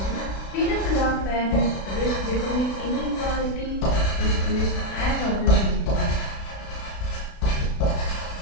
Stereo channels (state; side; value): late; right; 36 ms